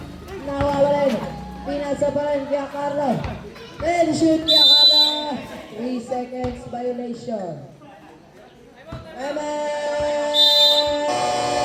Nawawalan. Pinasa pa rin Kuya Carlo. Then shoot Kuya Carlo. 3 seconds violation.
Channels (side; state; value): both; identical; correlation 1.00